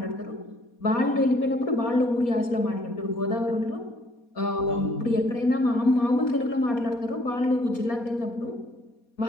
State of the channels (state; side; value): late; right; 4.2 ms